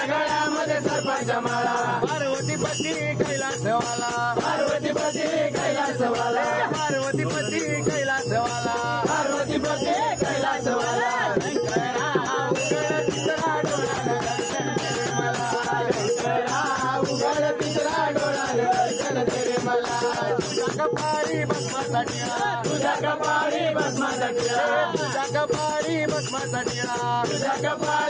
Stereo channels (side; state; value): both; identical; correlation 1.00